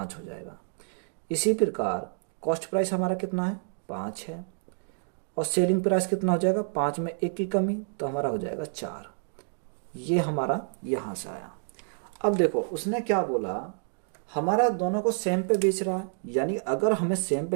हो जाएगा। इसी प्रकार कॉस्ट प्राइस हमारा कितना है 5 है, और सेलिंग प्राइस कितना हो जाएगा 5 में 1 की कमी, तो हमारा हो जाएगा 4। ये हमारा यहां से आया। अब देखो उसने क्या बोला, हमारा दोनों को सेम पे बेच रहा है, यानी अगर हमें सेम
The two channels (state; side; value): silent; left; digital silence